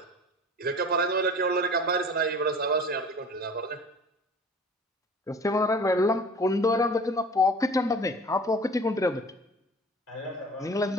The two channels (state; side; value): normal; both; correlation 0.43